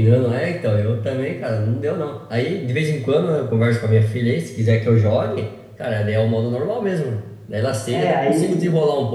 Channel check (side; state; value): both; identical; correlation 1.00